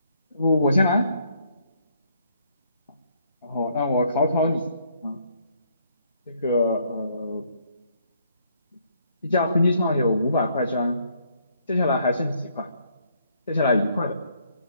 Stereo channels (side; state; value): both; inverted; correlation -0.69